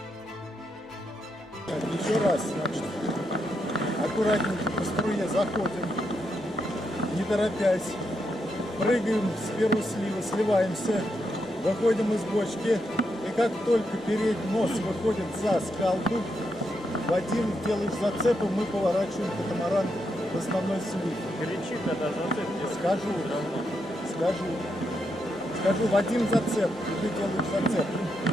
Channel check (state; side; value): normal; both; correlation 0.82